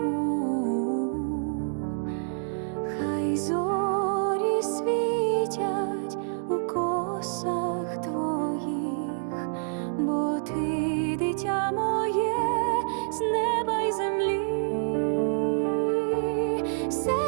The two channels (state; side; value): silent; left; digital silence